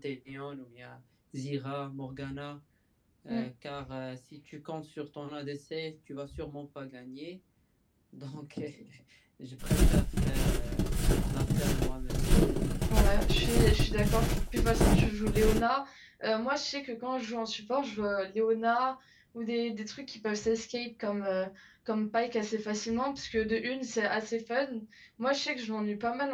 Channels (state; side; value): identical; both; correlation 1.00